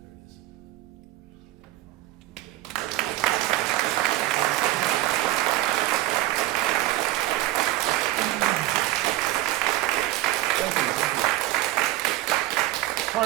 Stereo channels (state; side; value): quieter; left; 16.0 dB